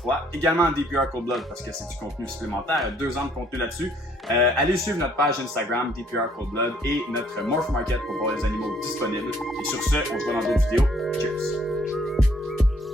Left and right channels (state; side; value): normal; both; correlation 0.64